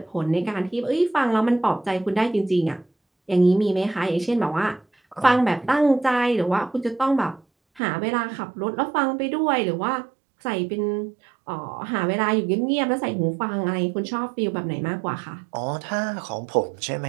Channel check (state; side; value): drops out; left; at 7.8 s